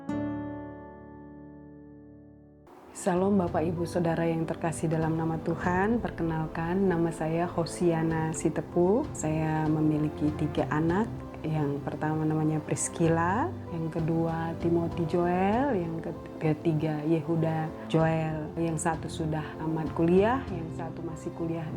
Salam Bapak Ibu Saudara yang terkasih dalam nama Tuhan. Perkenalkan, nama saya Hosiana Sitepu. Saya memiliki 3 anak. Yang pertama namanya Priscilla, yang kedua Timothy Joel, yang ketiga Yehuda Joel. Yang satu sudah tamat kuliah, yang satu masih kuliah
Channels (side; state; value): both; identical; correlation 1.00